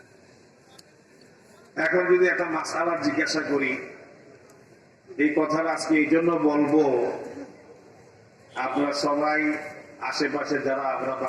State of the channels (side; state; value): both; identical; correlation 1.00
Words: এখন যদি একটা মাসআলা জিজ্ঞাসা করি, এই কথাটা আজকে এই জন্য বলবো, আপনারা সবাই আশেপাশে যারা আমরা